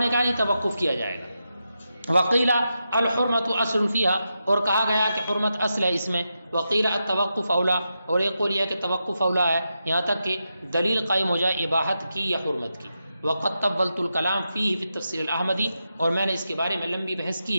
کہا یہ توقف کیا جائے گا. وقیل الحرمت اصل فیہا، اور کہا گیا کہ حرمت اصل ہے اس میں. وقیل التوقف اولا، اور ایک قول یہ کہ توقف اولا ہے، یہاں تک کہ دلیل قائم ہو جائے اباحت کی یا حرمت کی. وقد طولت الکلام فیہ فی التفسیر الاحمدی، اور میں نے اس کے بارے میں لمبی بحث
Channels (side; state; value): both; inverted; correlation -0.87